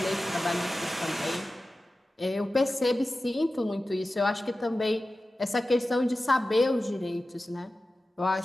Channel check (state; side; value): normal; both; correlation 0.95